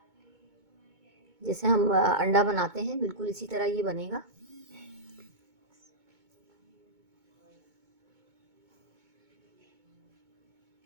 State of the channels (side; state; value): left; late; 2.2 ms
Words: जैसे हम अंडा बनाते हैं बिल्कुल इसी तरह ये बनेगा।